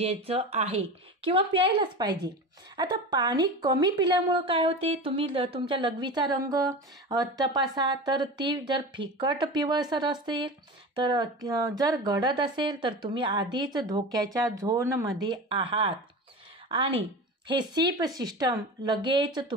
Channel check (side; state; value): both; normal; correlation 0.29